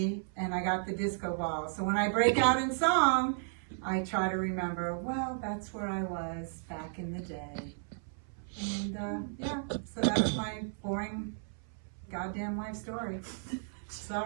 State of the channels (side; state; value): left; silent; 55 dB below the other